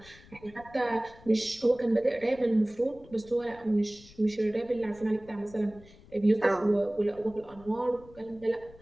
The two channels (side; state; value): left; noise; rumble, 23 dB below the sound